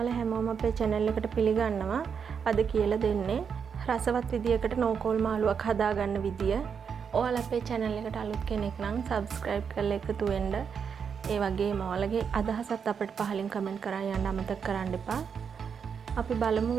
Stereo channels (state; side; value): quieter; left; 6.7 dB